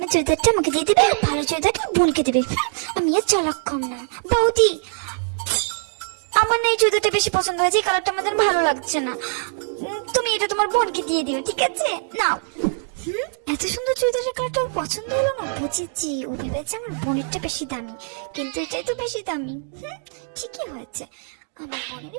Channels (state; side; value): silent; left; 63 dB below the other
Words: চুড়িদারটা আমাকে দিয়ে দেবে, আর ভালো চুড়িদারটা বোনকে দেবে। আমি আর চালাক কম না। বৌদি, আমার না এই চুড়িদারটা বেশি পছন্দ হয়েছে, এই কালারটা আমাদের ভালো লাগছে না। তুমি এটা তোমার বোনকে দিয়ে দিও, ঠিক আছে? নাও। এত সুন্দর চুড়িদারের কালারটা পছন্দ হলো না? বুঝেছি, ও ভেবেছে আমার বোনেরটা বেশি দামি, কিন্তু এটাই তো বেশি দামি। ঠিকই হয়েছে, আমার বোনেরই